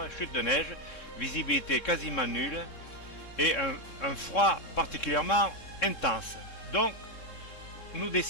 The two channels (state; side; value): late; right; 3.7 ms